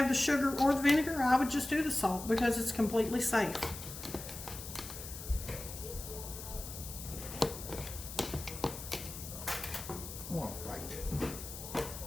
the sugar or the vinegar, I would just do the salt because it's completely safe.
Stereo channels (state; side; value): noise; left; hiss, 10 dB below the sound